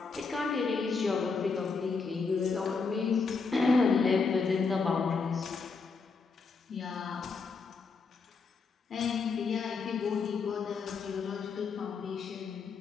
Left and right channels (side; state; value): right; quieter; 4.8 dB